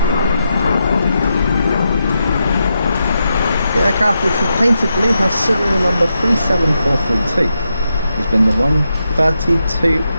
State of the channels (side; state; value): both; inverted; correlation -0.85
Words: The aircraft, which was painted blue, has serial number 37432. It's been the 132nd